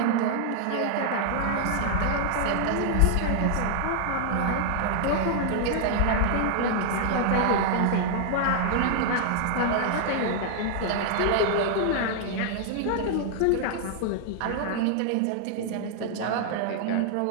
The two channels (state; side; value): different; both; correlation -0.01